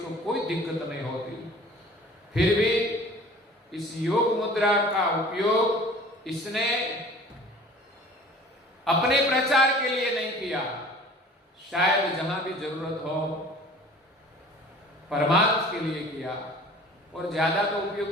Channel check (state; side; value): normal; both; correlation 0.46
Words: कोई दिक्कत नहीं होती। फिर भी इस योग मुद्रा का उपयोग इसने अपने प्रचार के लिए नहीं किया, शायद जहां भी जरूरत हो परमार्थ के लिए किया, और ज्यादा तो उपयोग